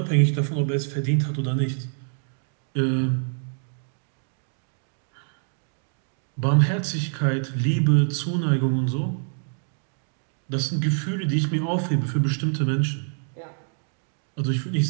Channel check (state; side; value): silent; left; digital silence